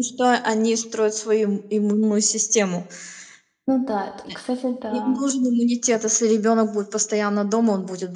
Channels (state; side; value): identical; both; correlation 1.00